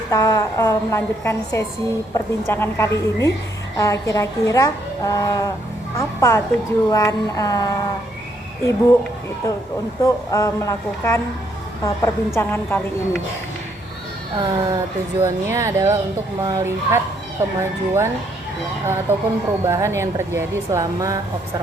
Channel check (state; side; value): normal; both; correlation 0.71